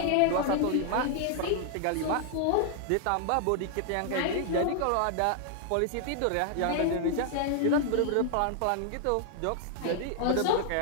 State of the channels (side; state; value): both; different; correlation 0.00